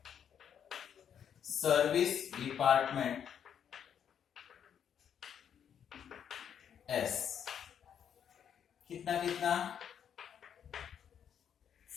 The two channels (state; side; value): quieter; right; 8.5 dB